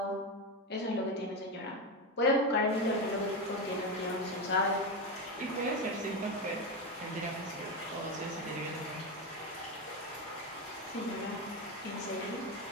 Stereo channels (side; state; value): both; normal; correlation 0.14